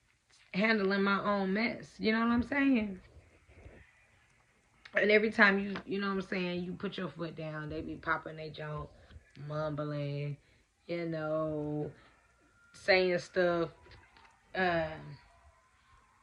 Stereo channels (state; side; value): identical; both; correlation 1.00